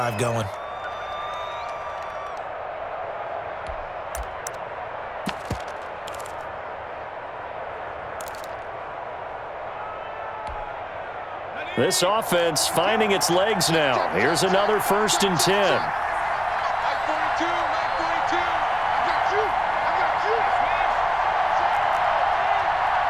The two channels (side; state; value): both; identical; correlation 1.00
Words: going. This offense finding its legs now. Here's another 1st and 10.